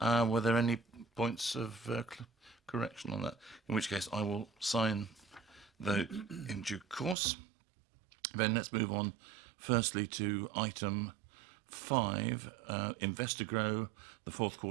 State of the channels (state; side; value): drops out; left; at 7.2 s